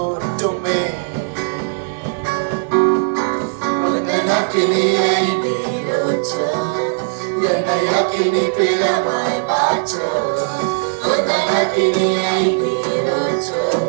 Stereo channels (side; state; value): left; silent; digital silence